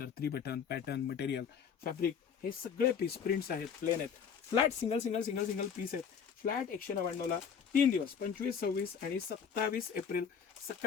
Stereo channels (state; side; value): quieter; right; 7.1 dB